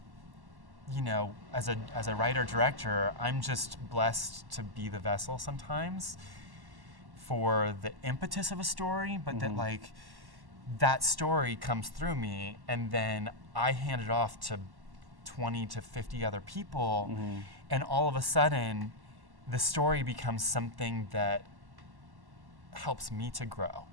as a writer-director, I'm just blessed to be the vessel sometimes for the impetus of a story, but that story comes through me, and then I hand it off to 20 to 50 other people, and all of a sudden the story becomes something that helps me to grow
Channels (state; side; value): late; left; 1.1 ms